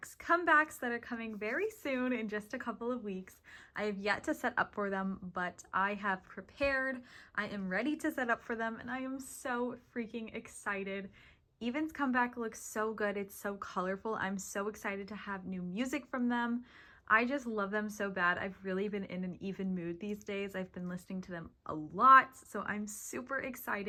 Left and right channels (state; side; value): identical; both; correlation 1.00